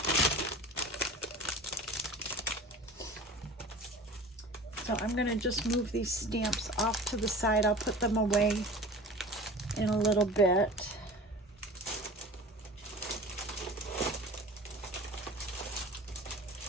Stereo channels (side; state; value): both; normal; correlation 0.39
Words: So I'm going to just move these stamps off to the side. I'll put them away in a little bit.